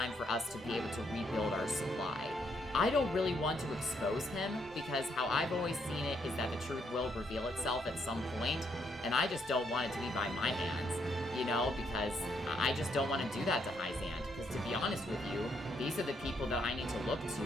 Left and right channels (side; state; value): both; normal; correlation 0.74